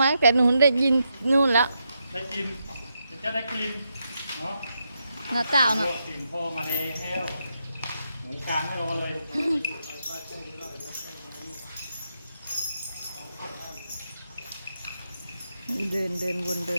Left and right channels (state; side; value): inverted; both; correlation -0.83